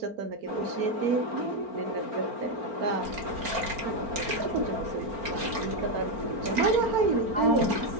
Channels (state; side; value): late; left; 4.4 ms